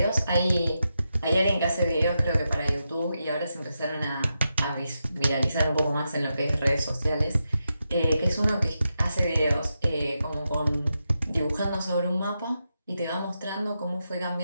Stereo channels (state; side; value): inverted; both; correlation -0.87